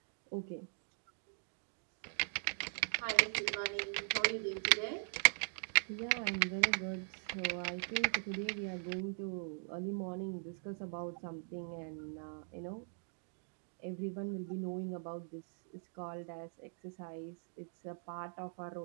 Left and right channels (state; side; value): silent; left; digital silence